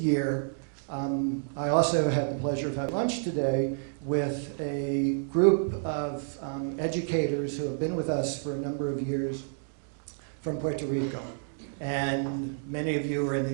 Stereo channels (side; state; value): left; silent; digital silence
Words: I also had the pleasure of having lunch today with a group of educators who have been with us for a number of years from Puerto Rico. And many of you are in